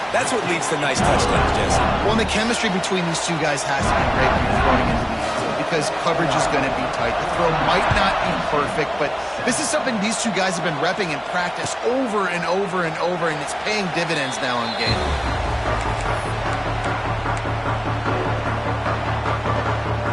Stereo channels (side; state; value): both; identical; correlation 1.00